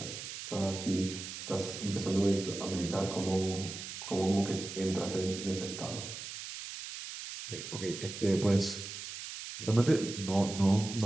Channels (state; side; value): noise; right; hiss, 9 dB below the sound